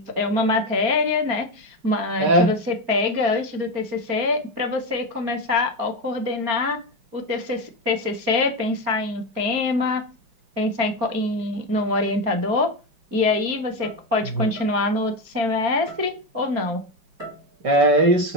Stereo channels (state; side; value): late; left; 4.4 ms